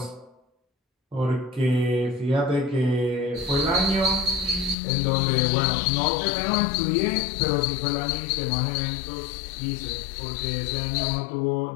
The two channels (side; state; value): right; drops out; at 4.8 s